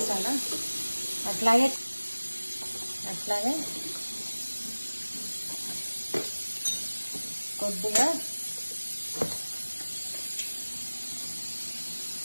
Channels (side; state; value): both; inverted; correlation -1.00